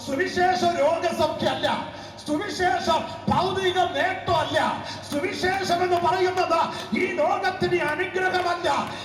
സുവിശേഷം രോഗസൗഖ്യമല്ല, സുവിശേഷം ഭൗതിക നേട്ടമല്ല. സുവിശേഷം എന്ന് പറയുന്നത് ഈ ലോകത്തിന് അനുഗ്രഹമല്ല,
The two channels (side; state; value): both; identical; correlation 1.00